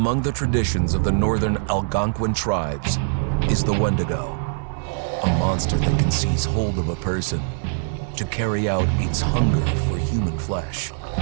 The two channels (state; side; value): silent; left; digital silence